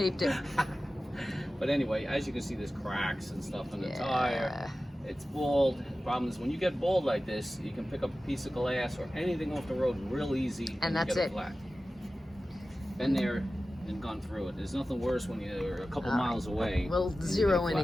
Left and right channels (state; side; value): normal; both; correlation 0.95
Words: it. But anyway, as you can see, there's cracks and stuff in the tire. It's bald. Problem is, when you get bald like this, you can pick up a piece of glass or anything off the road real easy. And that's get it. Flat. Been there and gone through it. There's nothing worse when you're a couple miles away. We'll zero in